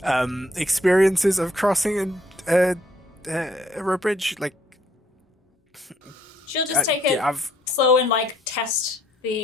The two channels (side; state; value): both; normal; correlation 0.67